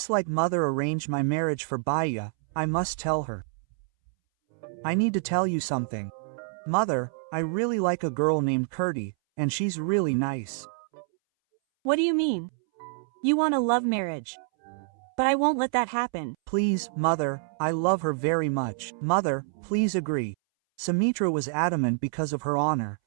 like mother arranged my marriage for Baya, I must tell her. I need to tell you something. Mother, I really like a girl named Kirti, and she's really nice. What do you mean? You want a love marriage. But I won't let that happen. Please, Mother, I love her very much. Mother, please agree. Sumitra was adamant because of her honor,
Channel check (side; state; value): left; silent; 60 dB below the other